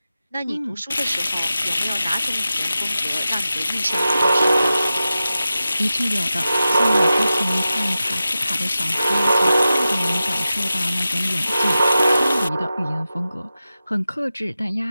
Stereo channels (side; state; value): both; inverted; correlation -0.93